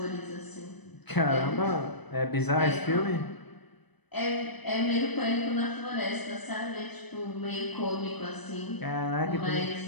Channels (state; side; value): late; right; 0.99 ms